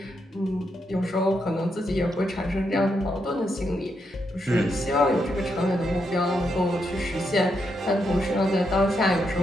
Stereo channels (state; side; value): normal; both; correlation 0.81